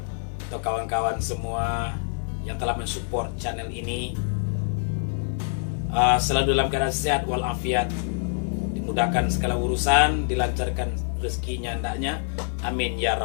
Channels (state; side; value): silent; right; 61 dB below the other